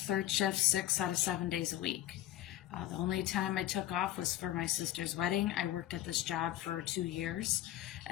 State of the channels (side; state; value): right; quieter; 13.7 dB